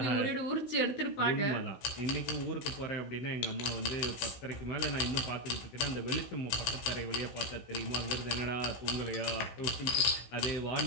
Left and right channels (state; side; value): late; right; 16 ms